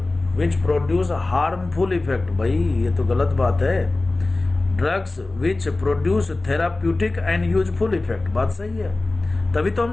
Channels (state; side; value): quieter; right; 3.1 dB